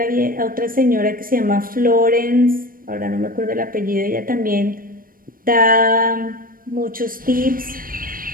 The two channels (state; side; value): late; left; 0.41 ms